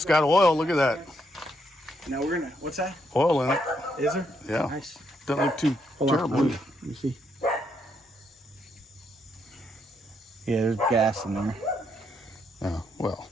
got oil. Look at that. Now we're gonna. What's that? Oil in it. Is there? Yeah. Nice. Doesn't look too Hold on, terrible. let me see. Yeah, there's gas in there. Oh, well.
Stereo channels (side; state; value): both; normal; correlation 0.76